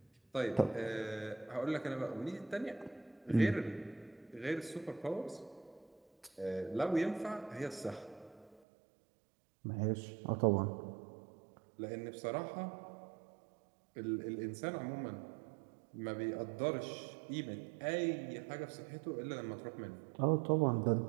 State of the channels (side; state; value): left; drops out; at 8.6 s